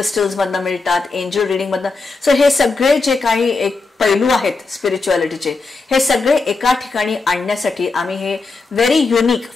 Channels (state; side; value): quieter; right; 3.9 dB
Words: मधनं मिळतात, एंजल रिडिंग मधनं. सो हे सगळे जे काही एक पैलू आहेत स्पिरिच्युअलिटीचे हे सगळे एका ठिकाणी आणण्यासाठी आम्ही हे very unique